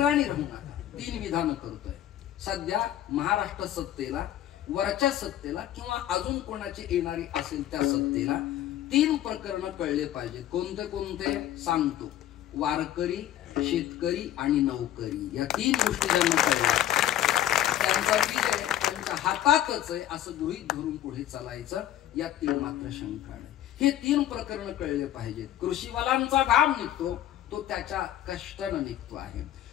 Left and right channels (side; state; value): right; quieter; 12.3 dB